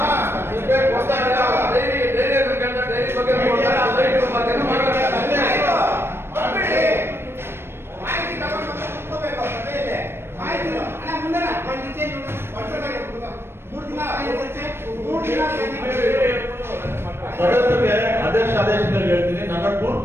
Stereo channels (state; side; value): late; left; 0.12 ms